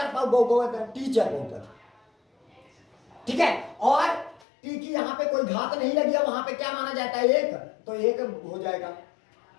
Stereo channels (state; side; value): drops out; right; at 4.5 s